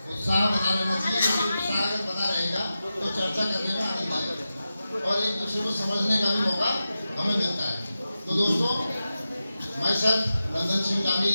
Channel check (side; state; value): both; inverted; correlation -0.92